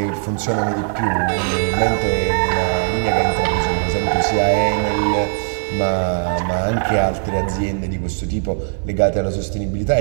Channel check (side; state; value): left; silent; 60 dB below the other